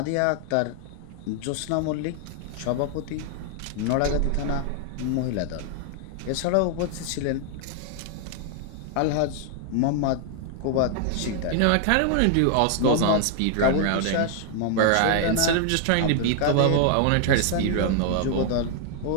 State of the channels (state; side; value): different; both; correlation 0.00